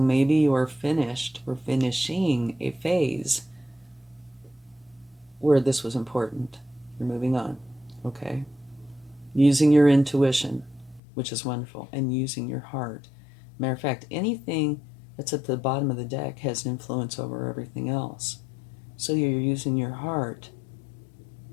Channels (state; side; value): drops out; right; at 11.0 s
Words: you're finished or finishing a phase where this was important. You're moving on, okay? Using your intuition, which is wonderful, and using your heart. Matter of fact, anything that's at the bottom of the deck has influence over everything else. So you're using your heart,